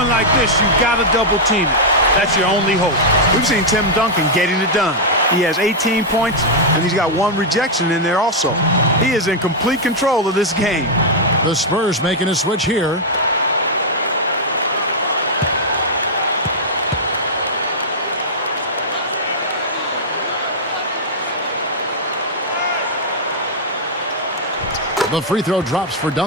like this, you've got to double team it. That's your only hope. We've seen Tim Duncan getting it done. He has 18 points, and he's got 1 rejection in there also. He is in complete control of this game. The Spurs making a switch here. The free throw drops for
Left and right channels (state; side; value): normal; both; correlation -0.04